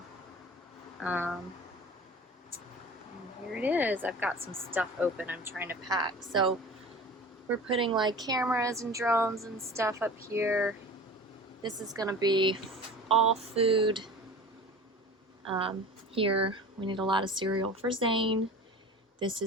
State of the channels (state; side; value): normal; both; correlation 0.38